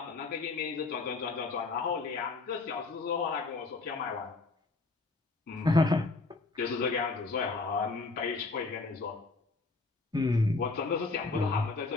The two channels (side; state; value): right; quieter; 3.6 dB